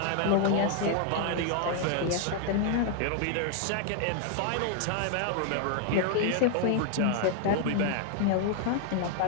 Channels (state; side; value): different; both; correlation 0.00